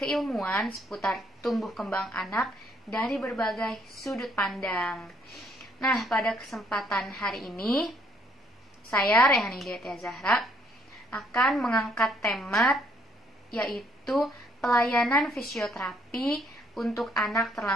seputar tumbuh kembang anak dari berbagai sudut pandang. Nah, pada kesempatan hari ini saya Rehani Diatia Zahra akan mengangkat tema yaitu pelayanan fisioterapi untuk anak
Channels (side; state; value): both; normal; correlation 0.67